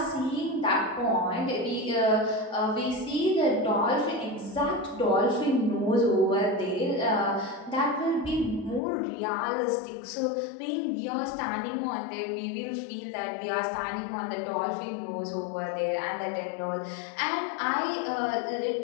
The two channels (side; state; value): right; drops out; at 8.8 s